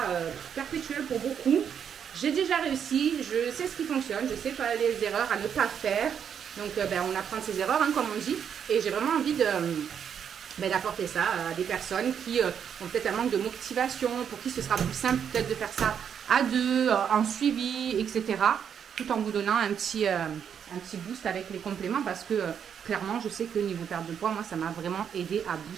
perpétuel pour beaucoup. J'ai déjà réussi, je sais ce qui fonctionne, je sais pas les erreurs à ne pas faire. Donc, on apprend de ses erreurs, hein, comme on dit. Et j'ai vraiment envie d'apporter ça à des personnes qui ont peut-être un manque de motivation, pour qui ce sera plus simple peut-être de faire ça à deux, en suivi, etc. Tout en vous donnant un petit boost avec les compléments parce que clairement, je sais que niveau perte de poids, moi, ça m'a vraiment aidé à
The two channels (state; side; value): quieter; left; 8.0 dB